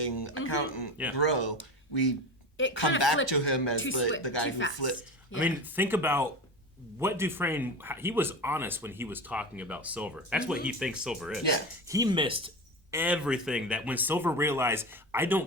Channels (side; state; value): both; normal; correlation 0.26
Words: accountant grow. We come back to him as the guy who flipped. I mean, think about what Dufresne, he was honest when he was talking about Silver. That's what he thinks Silver is. Yeah. He missed everything that when Silver realized, I